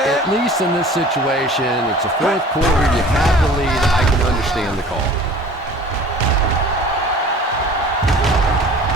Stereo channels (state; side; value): normal; both; correlation 0.45